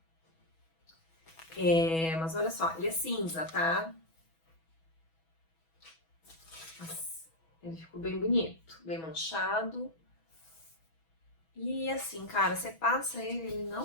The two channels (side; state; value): right; late; 6.2 ms